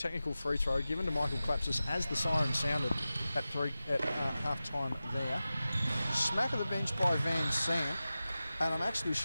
free throw given to Michael Klapsis as the siren sounded at half time there. Smack of the bench by Van Sant, and I'm actually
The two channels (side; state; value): both; inverted; correlation -0.95